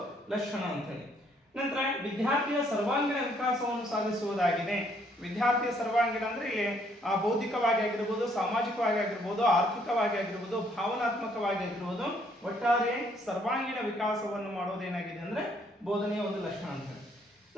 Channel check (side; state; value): both; normal; correlation 0.67